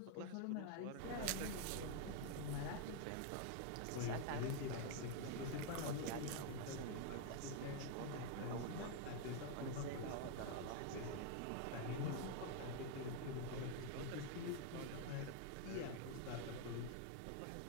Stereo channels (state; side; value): different; both; correlation 0.00